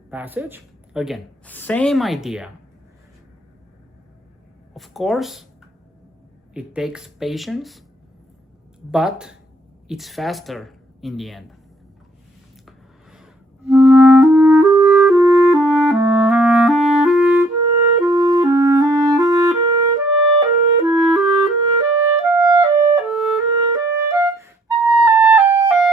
passage. Again, same idea. Of course, it takes patience, but it's faster in the end.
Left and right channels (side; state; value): both; normal; correlation 0.62